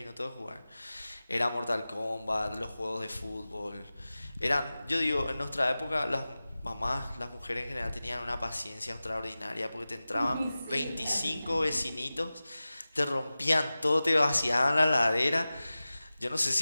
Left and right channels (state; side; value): inverted; both; correlation -0.96